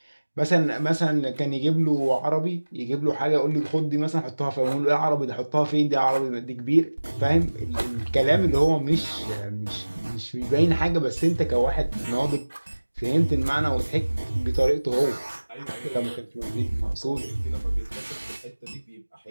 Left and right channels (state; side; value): inverted; both; correlation -1.00